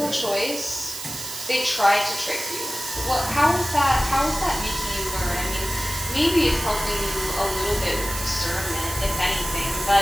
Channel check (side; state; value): right; noise; hiss, 8 dB below the sound